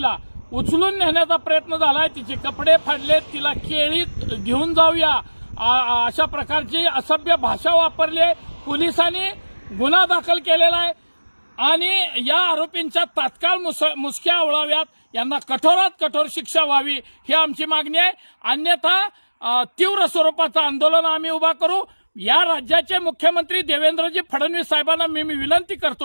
उचलून नेण्याचा प्रयत्न झालाय। तिचे कपडे फाडलेत, तिला केळीत घेऊन जाऊया अशा प्रकारची असभ्य भाषा वापरली आहे। पोलिसांनी गुन्हा दाखल केलेला आहे आणि या आरोपींच्या तात्काळ मुसक्या आवळाव्यात, यांना कठोरात कठोर शिक्षा व्हावी ही आमची मागणी आहे। अन्यथा तीव्र स्वरूपाचं आंदोलन आम्ही उभा करू। या राज्याचे मुख्यमंत्री देवेंद्रजी फडणवीस साहेबांना मी विनंती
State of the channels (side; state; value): both; inverted; correlation -1.00